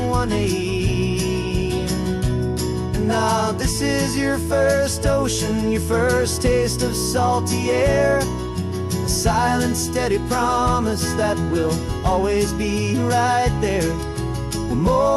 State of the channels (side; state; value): both; identical; correlation 1.00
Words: one aim. And now this is your first ocean, your first taste of salty air, a silent, steady promise that we'll always be right there. We're